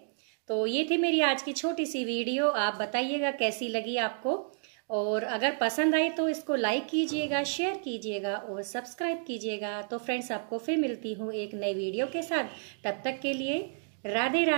तो ये थी मेरी आज की छोटी सी वीडियो। आप बताइएगा कैसी लगी आपको, और अगर पसंद आई तो इसको लाइक कीजिएगा, शेयर कीजिएगा और सब्सक्राइब कीजिएगा। तो फ्रेंड्स, आपको फिर मिलती हूँ एक नई वीडियो के साथ। तब तक के लिए राधे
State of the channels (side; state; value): left; silent; digital silence